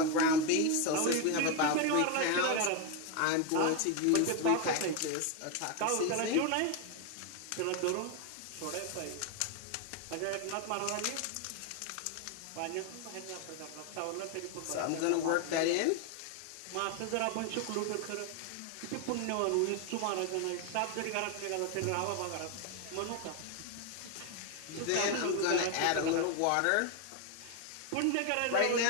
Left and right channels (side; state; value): both; different; correlation 0.01